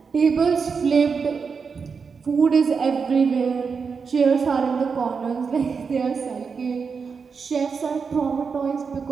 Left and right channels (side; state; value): left; quieter; 5.5 dB